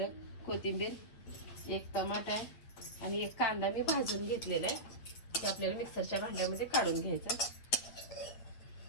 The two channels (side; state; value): right; late; 9.1 ms